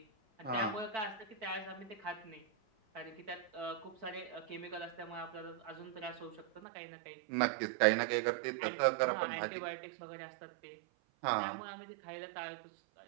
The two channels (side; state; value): left; drops out; at 6.6 s